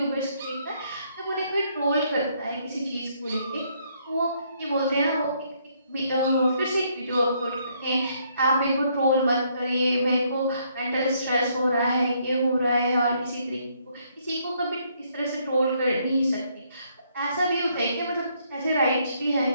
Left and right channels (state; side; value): inverted; both; correlation -0.70